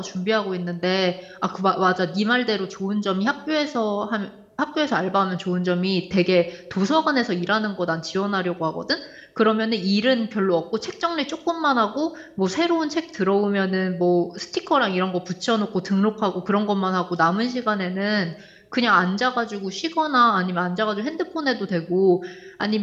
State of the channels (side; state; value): both; identical; correlation 1.00